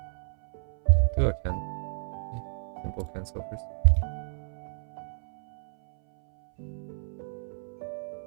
Do a simple cancel first.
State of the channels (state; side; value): silent; left; 57 dB below the other